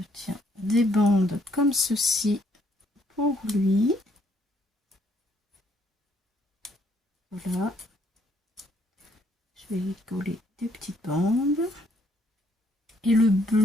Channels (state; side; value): normal; both; correlation 0.68